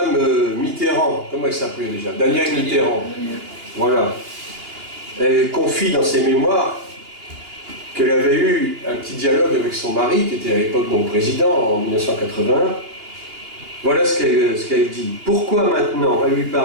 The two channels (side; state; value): left; late; 2.8 ms